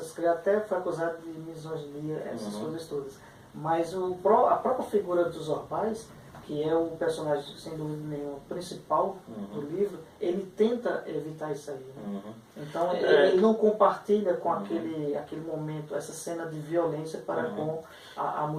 críticas, até foi acusado de misoginia, essas coisas todas. Mas a própria figura dos Orbais, que é o personagem, sem dúvida nenhuma, principal do livro, ele tenta evitar isso aí. Né? Então, ele não compartilha com aquele momento, essa cena de violência para com a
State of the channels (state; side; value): identical; both; correlation 1.00